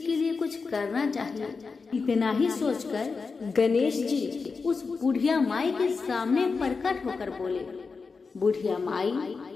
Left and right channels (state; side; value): quieter; right; 4.7 dB